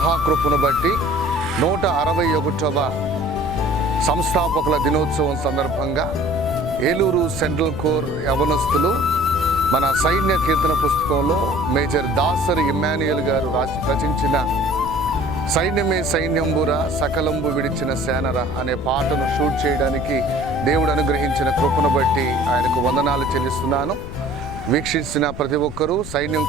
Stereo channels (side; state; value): left; noise; rumble, 11 dB below the sound